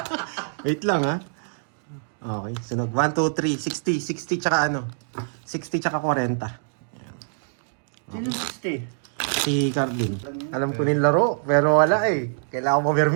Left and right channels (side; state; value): left; silent; digital silence